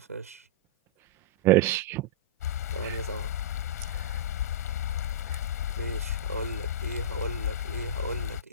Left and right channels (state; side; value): normal; both; correlation -0.18